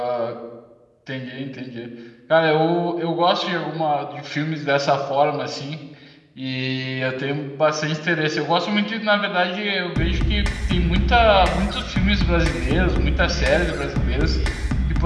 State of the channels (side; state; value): both; identical; correlation 1.00